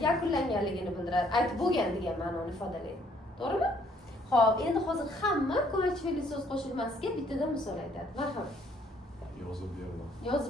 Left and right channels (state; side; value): normal; both; correlation 0.65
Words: yakunlanganligini bildiradi. Aytib bo'lgan degan ma'noni ifodalaydi. To'g'rimi? Xo'p, endi hozir hamma ko'makchi fe'lli so'z qo'shilmasiga bittadan misol aytadi. Marhamat. Yozib berdim.